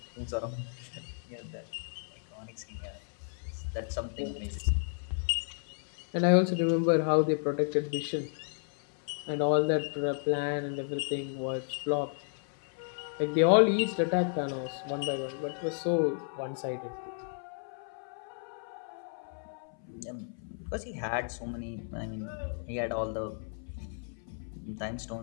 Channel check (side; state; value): right; silent; 56 dB below the other